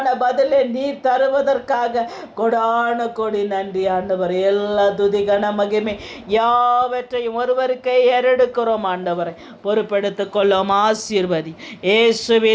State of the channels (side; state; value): both; identical; correlation 1.00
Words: பதிலை நீர் தருவதற்காக கொடான கொடி நன்றி ஆண்டவர். எல்லா துதி கன மகிமை யாவற்றையும் ஒருவருக்கே ஏறெடுக்கிறோம் ஆண்டவரை. பொறுப்பெடுத்துக் கொள்ளும். ஆசீர்வதி.